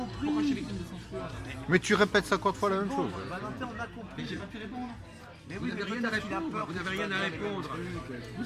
compris. J'ai des films de censure. Mais tu répètes 50 fois la même chose. Valentin, on a compris. J'ai pas pu répondre. Mais Vous oui, n'avez mais rien à peut-être qu'il a répondre. peur Vous que n'avez tu rien vas à dire les mêmes répondre. trucs.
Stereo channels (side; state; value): both; identical; correlation 1.00